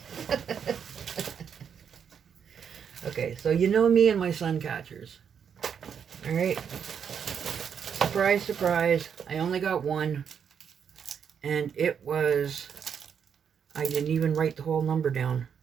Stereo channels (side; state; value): left; quieter; 7.5 dB